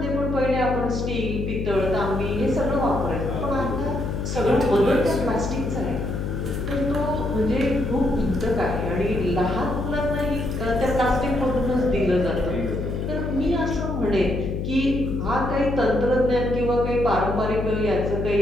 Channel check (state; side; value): noise; left; hum, 2 dB below the sound